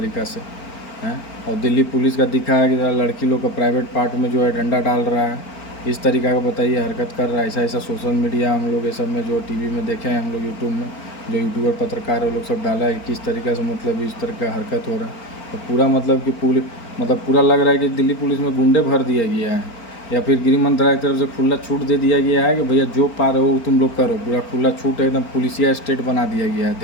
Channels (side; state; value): right; late; 4.4 ms